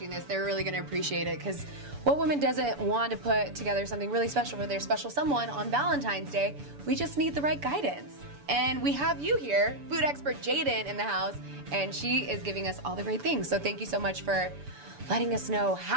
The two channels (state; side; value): late; left; 7.0 ms